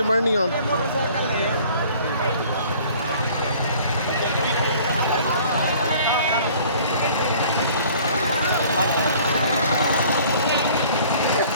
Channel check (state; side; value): inverted; both; correlation -0.52